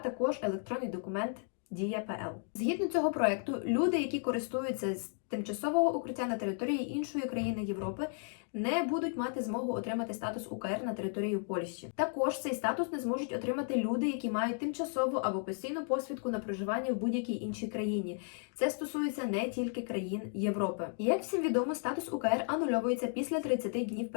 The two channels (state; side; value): silent; right; 55 dB below the other